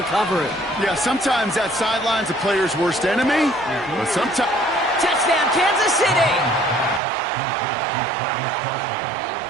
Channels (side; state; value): left; drops out; at 7.0 s